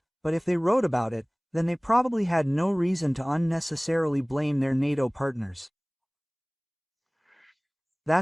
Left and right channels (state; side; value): identical; both; correlation 1.00